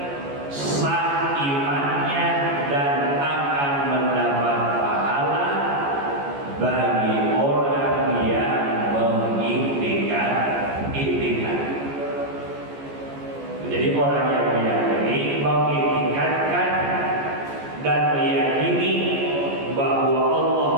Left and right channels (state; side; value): late; left; 14 ms